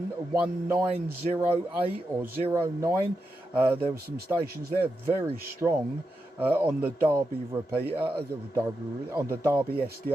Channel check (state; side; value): normal; both; correlation 0.87